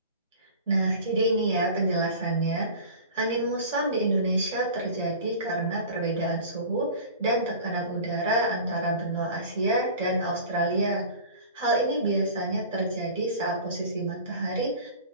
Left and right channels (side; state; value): both; inverted; correlation -0.38